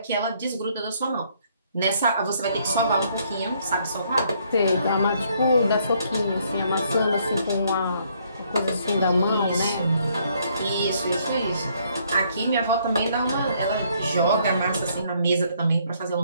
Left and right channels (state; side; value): inverted; both; correlation -0.68